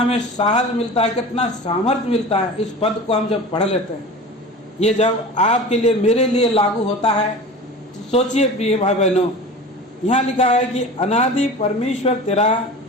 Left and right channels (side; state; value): both; normal; correlation 0.35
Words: साहस मिलता है, कितना सामर्थ्य मिलता है। इस पद को हम जब पढ़ लेते हैं, ये जब आपके लिए मेरे लिए लागू होता है तो सोचिए प्रिय भाई बहनों, यहाँ लिखा है कि अनादि परमेश्वर तेरा